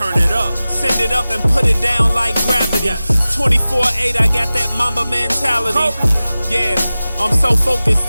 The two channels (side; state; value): both; inverted; correlation -0.96